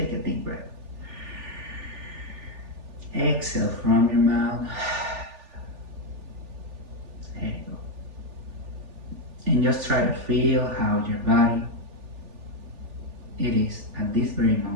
a deep breath. Exhale from your mouth. There you go. And just try to feel how your body it is at this very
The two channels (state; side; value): late; left; 3.4 ms